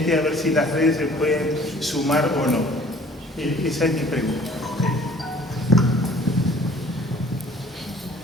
a ver si las redes se pueden sumar o no. Esa es mi pregunta.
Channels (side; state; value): both; normal; correlation 0.53